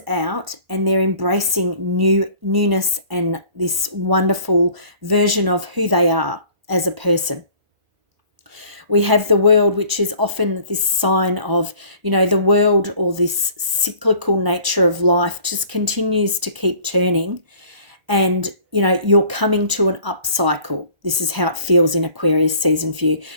out and they're embracing newness and this wonderful version of who they are as a person. We have the World, which is often this sign of, the world, or this cyclical nature of life just continues to keep turning. And, you're coming to an up cycle. This is how it feels in Aquarius season for you.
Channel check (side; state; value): left; late; 1.0 ms